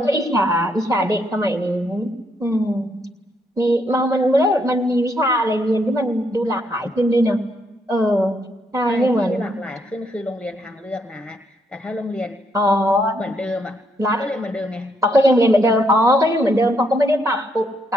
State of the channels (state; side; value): normal; both; correlation 0.74